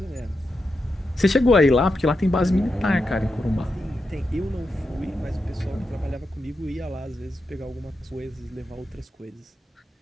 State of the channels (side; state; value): both; normal; correlation 0.87